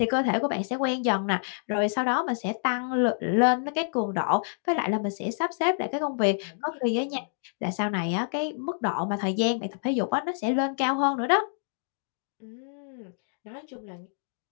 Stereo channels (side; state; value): right; silent; digital silence